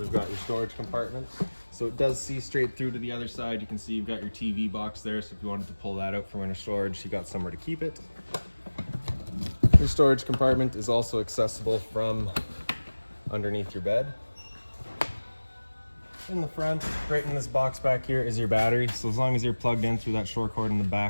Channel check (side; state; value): both; inverted; correlation -1.00